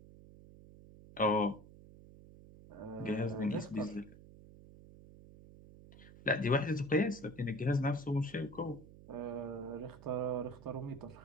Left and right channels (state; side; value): noise; right; hum, 19 dB below the sound